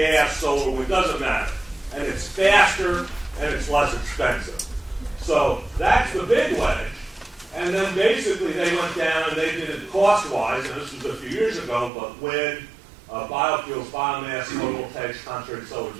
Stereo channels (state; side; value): drops out; left; at 11.9 s